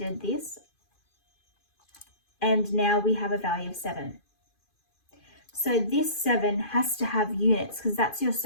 this, and now we have a value of 7. So this 7 has to have units because that's your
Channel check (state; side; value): late; right; 2.5 ms